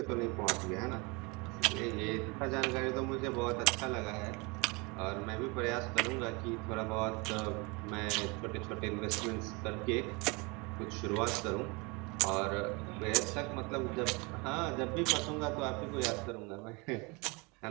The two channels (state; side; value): quieter; left; 28.2 dB